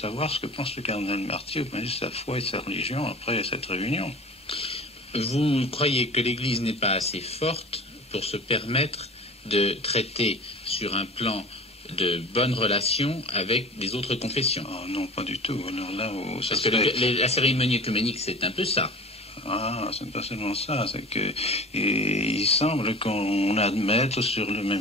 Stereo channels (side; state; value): both; normal; correlation 0.39